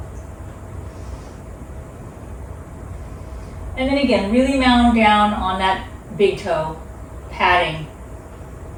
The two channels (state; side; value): identical; both; correlation 1.00